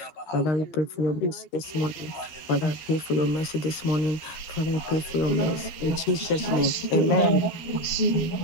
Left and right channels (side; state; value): right; late; 13 ms